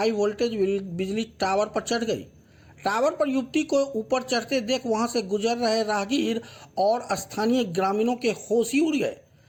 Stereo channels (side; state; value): both; identical; correlation 1.00